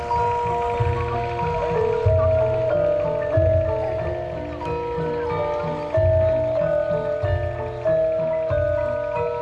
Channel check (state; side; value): identical; both; correlation 1.00